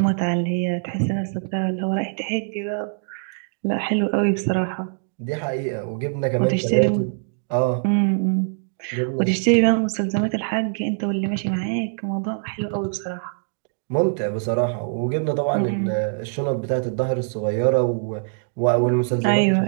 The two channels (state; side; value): silent; left; digital silence